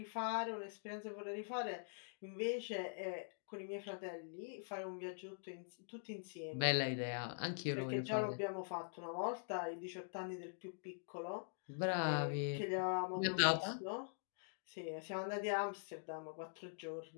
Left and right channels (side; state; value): right; silent; digital silence